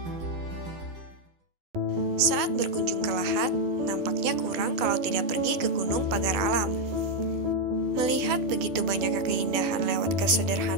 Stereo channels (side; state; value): left; late; 12 ms